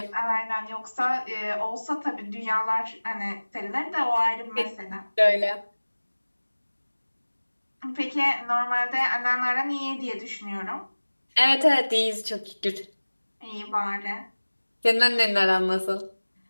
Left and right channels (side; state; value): both; inverted; correlation -1.00